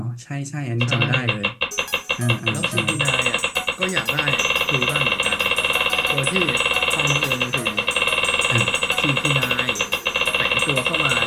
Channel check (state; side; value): identical; both; correlation 1.00